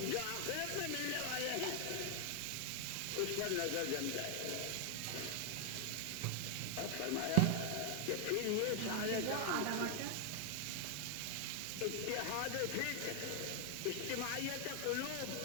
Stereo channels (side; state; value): both; different; correlation 0.00